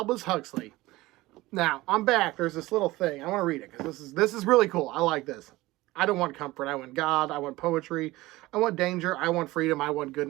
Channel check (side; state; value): left; quieter; 19.0 dB